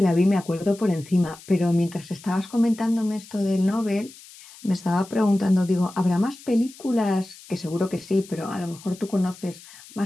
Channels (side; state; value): left; noise; hiss, 20 dB below the sound